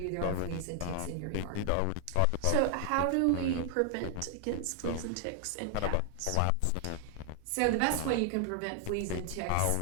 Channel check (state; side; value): different; both; correlation 0.00